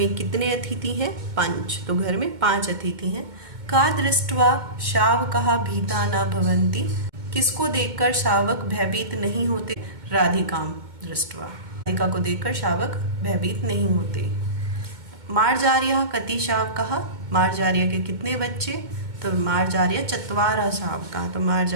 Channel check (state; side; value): late; left; 2.2 ms